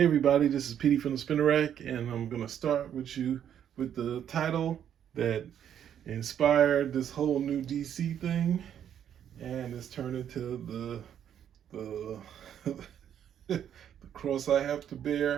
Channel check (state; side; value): quieter; left; 9.5 dB